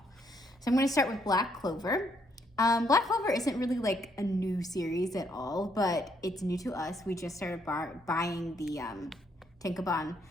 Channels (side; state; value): both; normal; correlation 0.72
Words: So I'm gonna start with Black Clover. Black Clover isn't really like a new series at all, but it's new to us. We just started buying the Tenkaban